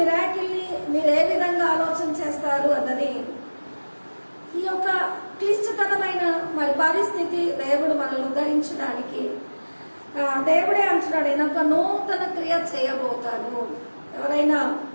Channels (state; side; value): inverted; both; correlation -1.00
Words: మీరు ఏ విధంగా ఆలోచన చేస్తారు అన్నది ఈ యొక్క క్లిష్టతరమైన మరి పరిస్థితి దేవుడు మనల్ని ఉద్ధరించడానికి దేవుడే అంటున్నాడు, నేను ఒక నూతన క్రియ చేయబోతాను. ఎవరైనా